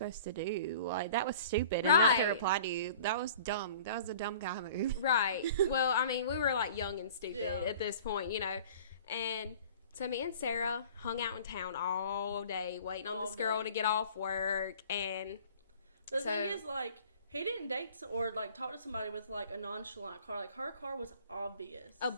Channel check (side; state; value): both; inverted; correlation -0.46